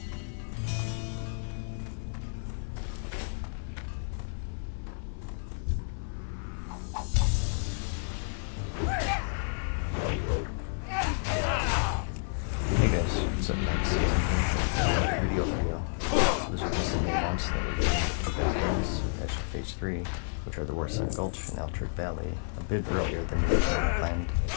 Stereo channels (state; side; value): silent; right; 57 dB below the other